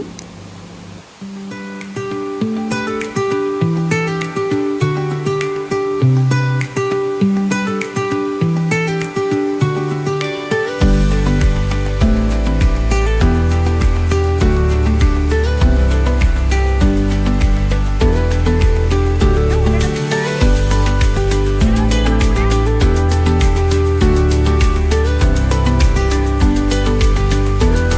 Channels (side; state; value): both; identical; correlation 1.00